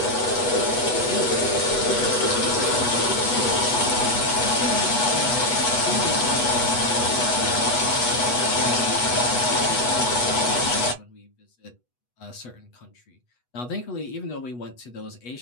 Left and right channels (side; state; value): right; late; 8.1 ms